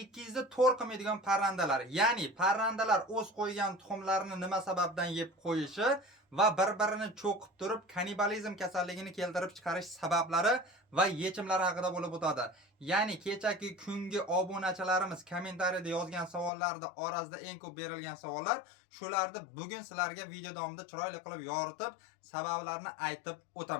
qilmaydigan parrandalar. Ya'ni parrandalar o'z qo'ygan tuxumlarini nima sababdan yeb qo'yishi va bir-birini cho'qib turib kannibalizm kasalligini keltirib chiqarish sabablari va yechimlari haqida bo'lib o'tadi. Ya'ni kechagi kungi obunachilarimiz kommentariyada yozgan savollarda orasida eng ko'p berilgan savollar, shularni bugun sizlarga video davomida chiroyli qilib yoritib, sabablarini aytib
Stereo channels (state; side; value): drops out; right; at 16.5 s